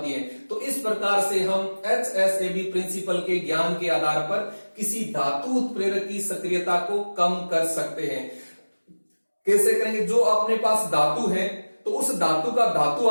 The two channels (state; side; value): inverted; both; correlation -1.00